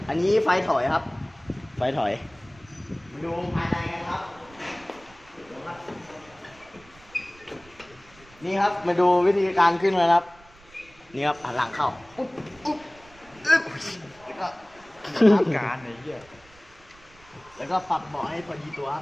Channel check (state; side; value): noise; right; rumble, 26 dB below the sound